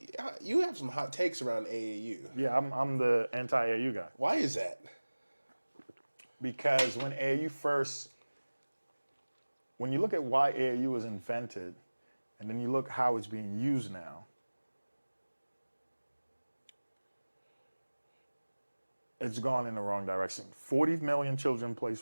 you have some hot takes around AAU. Yeah, I'm the anti-AAU guy. Why is that? Because when you look at why AAU was invented, and then you look how it's being used now, it's gone in the wrong direction. 40 million children play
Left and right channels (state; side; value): inverted; both; correlation -1.00